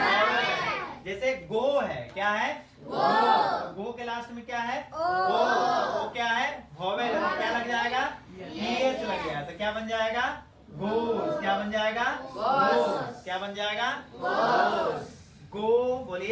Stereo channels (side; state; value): both; identical; correlation 1.00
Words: जैसे गो है, क्या है? गो के लास्ट में क्या है? ओ क्या है? वॉवेल है, क्या लग जाएगा? ES लग गया तो क्या बन जाएगा? गोस। क्या बन जाएगा? गोस। क्या बन जाएगा? गो।